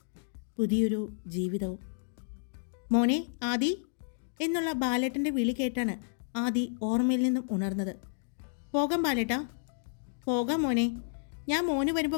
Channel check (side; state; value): right; silent; digital silence